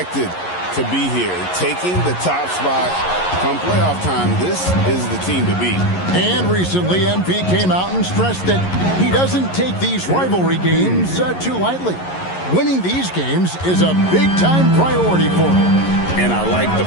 to be here. Taking the top spot come playoff time, this is the team to beat. And recently, MP came out and stressed that he doesn't take these rivalry games too lightly. Winning these games is a big-time priority for him. And I like the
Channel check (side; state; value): right; late; 11 ms